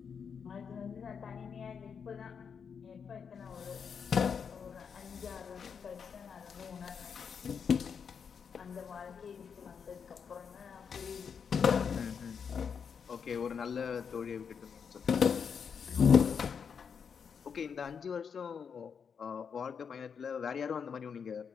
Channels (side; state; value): right; quieter; 6.6 dB